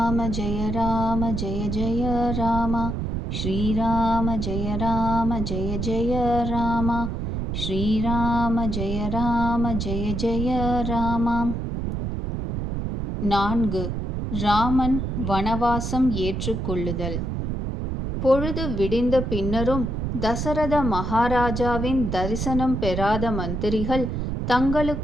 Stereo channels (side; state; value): right; noise; rumble, 3 dB below the sound